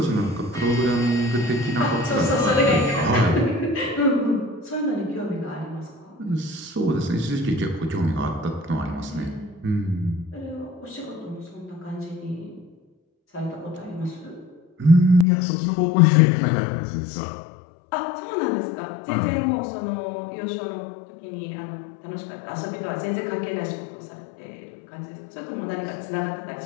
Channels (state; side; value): drops out; right; at 15.2 s